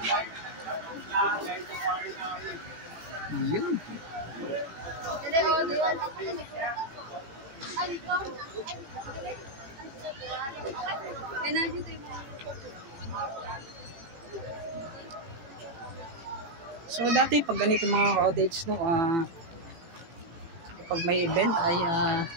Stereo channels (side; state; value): left; late; 18 ms